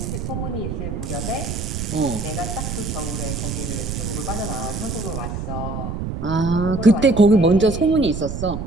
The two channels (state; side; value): noise; right; rumble, 5 dB below the sound